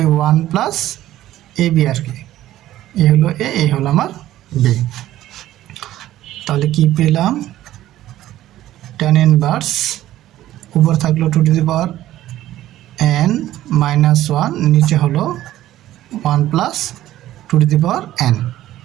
1 plus ab আর কি, এ হলো a, এই হলো আমার b। তাহলে কি পেলাম, tan ইনভার্স উপর থাকলো 2n মাইনাস 1, নিচে হলো 1 প্লাস 2n।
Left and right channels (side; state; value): left; quieter; 14.0 dB